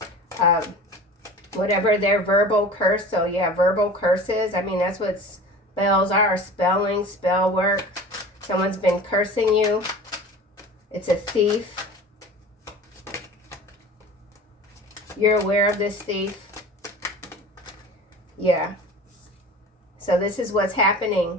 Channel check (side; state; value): both; normal; correlation 0.39